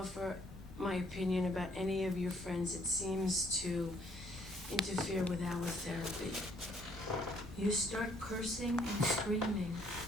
my opinion about any of your friends, it seems to interfere with our therapy. You start cursing and screaming.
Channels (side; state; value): both; normal; correlation 0.65